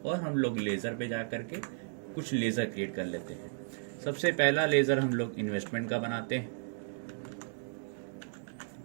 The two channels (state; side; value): silent; left; digital silence